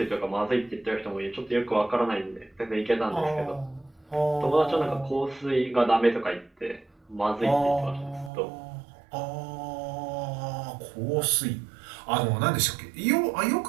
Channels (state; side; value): drops out; left; at 8.3 s